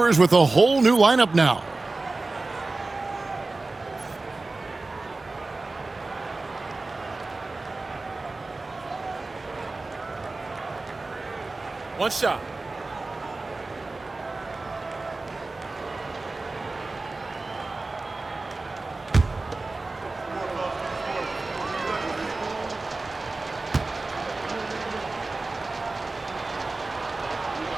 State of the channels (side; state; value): left; quieter; 3.4 dB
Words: with a whole new lineup now. One shot.